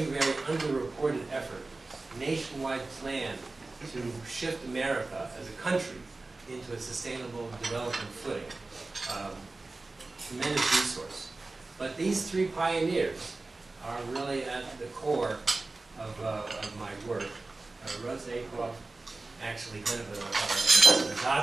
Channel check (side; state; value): left; quieter; 3.3 dB